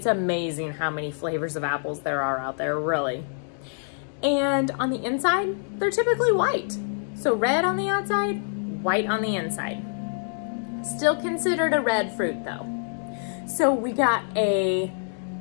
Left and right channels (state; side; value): silent; right; digital silence